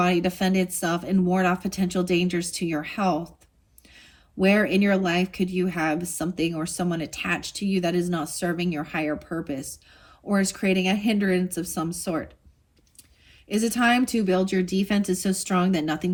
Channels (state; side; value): identical; both; correlation 1.00